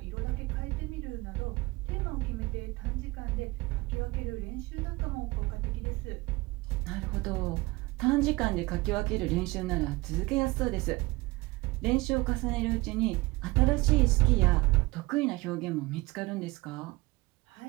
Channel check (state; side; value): quieter; left; 22.2 dB